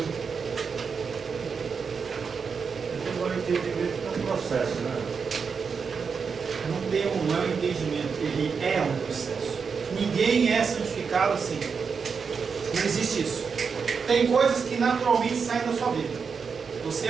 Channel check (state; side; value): quieter; left; 5.7 dB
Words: Agora o entendimento é um processo, né? Não é um entendimento, ele é um processo. Ninguém é santificado assim. Não existe isso. Tem coisas que naturalmente saem da sua vida. Você